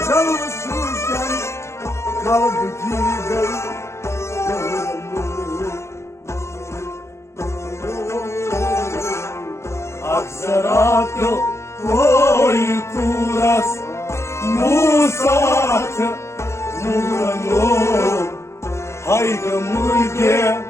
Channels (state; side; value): late; right; 0.13 ms